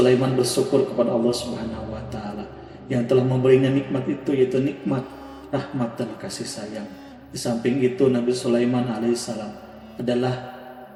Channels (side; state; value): both; identical; correlation 1.00